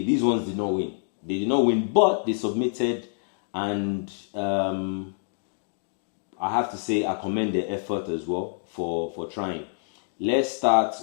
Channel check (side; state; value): right; silent; digital silence